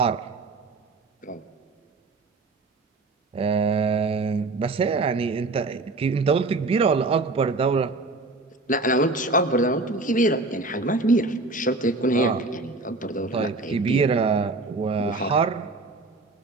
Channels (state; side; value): quieter; left; 3.3 dB